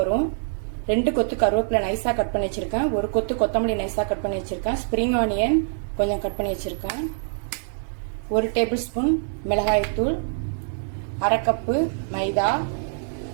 வரும். 2 கொத்து கருவேப்பிலை நைஸா கட் பண்ணி வச்சிருக்கேன். 1 கொத்து கொத்தமல்லி நைஸா கட் பண்ணி வச்சிருக்கேன். ஸ்ப்ரிங் ஆனியன் கொஞ்சம் கட் பண்ணி வச்சிருக்கேன். 1 டேபிள் ஸ்பூன் மிளகாய்த்தூள், 1/2 கப்பு மைதா,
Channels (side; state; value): left; silent; digital silence